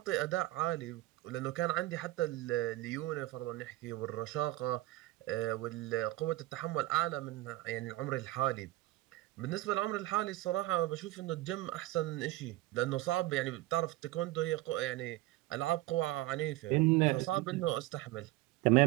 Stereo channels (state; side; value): quieter; left; 17.8 dB